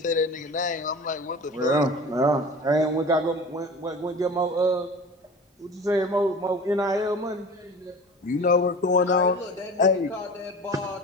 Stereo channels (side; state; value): both; normal; correlation 0.36